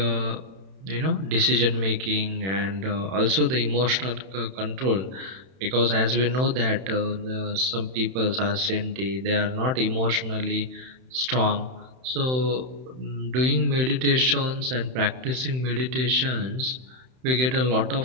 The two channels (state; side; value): late; left; 31 ms